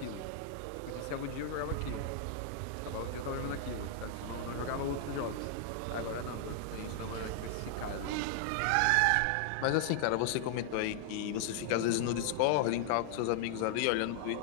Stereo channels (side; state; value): both; different; correlation -0.01